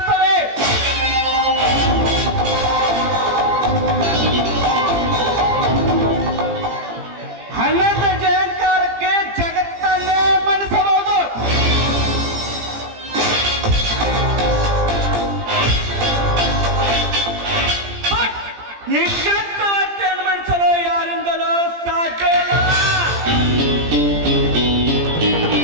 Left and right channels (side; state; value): left; late; 17 ms